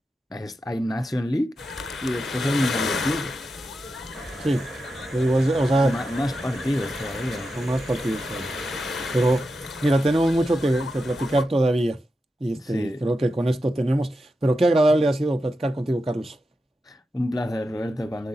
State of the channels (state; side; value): normal; both; correlation 0.89